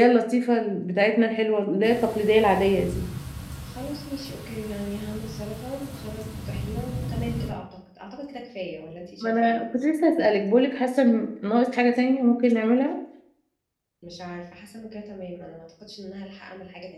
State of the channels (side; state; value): both; identical; correlation 1.00